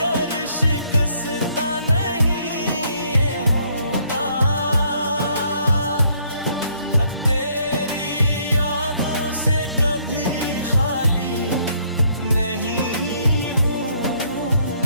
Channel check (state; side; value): inverted; both; correlation -0.67